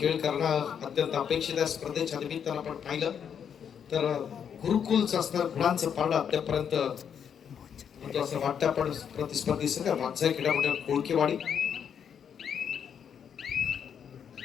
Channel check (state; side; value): quieter; right; 7.9 dB